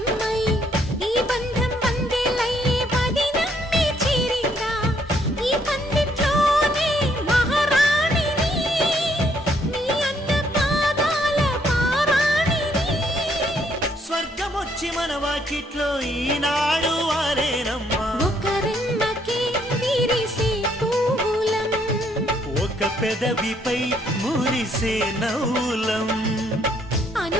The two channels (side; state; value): both; normal; correlation 0.69